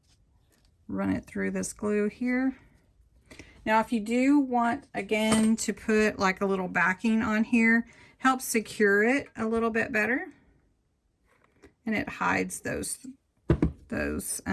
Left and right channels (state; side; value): identical; both; correlation 1.00